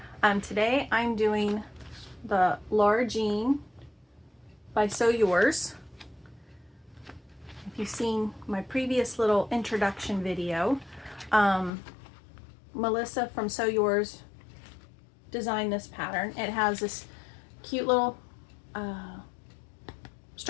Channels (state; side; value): drops out; right; at 11.7 s